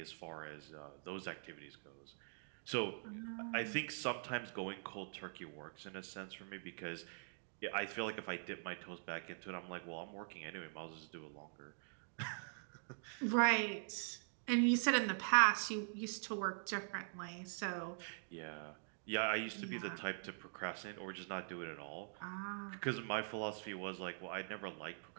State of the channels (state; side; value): silent; left; digital silence